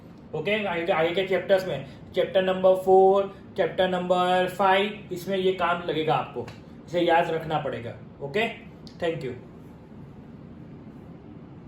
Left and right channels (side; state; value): both; identical; correlation 1.00